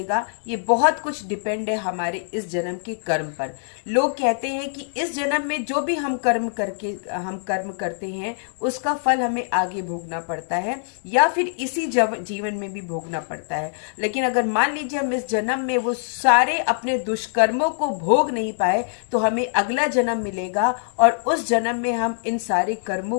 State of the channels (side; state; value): right; silent; digital silence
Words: ये बहुत कुछ डिपेंड है हमारे इस जन्म के कर्म पर। लोग कहते हैं कि इस जन्म में जो भी हम कर्म करते हैं उसका फल हमें आगे भोगना पड़ता है, या फिर इसी जीवन में भी भोगना पड़ता है। लेकिन अगर मान लीजिए हम इस जन्म में वो सारे अपने दुष्कर्मों को भोग नहीं पाए तो हमें अगला जन्म मिलेगा, और उस जन्म में हम इन सारे